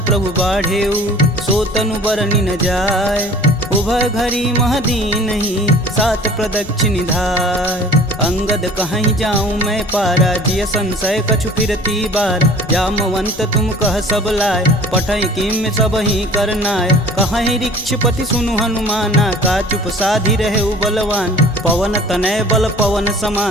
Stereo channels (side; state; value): left; noise; rumble, 17 dB below the sound